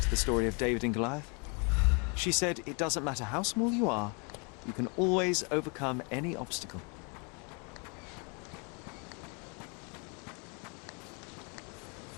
the story of David and Goliath. She said it doesn't matter how small you are, you can always overcome any obstacle.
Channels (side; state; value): right; quieter; 34.6 dB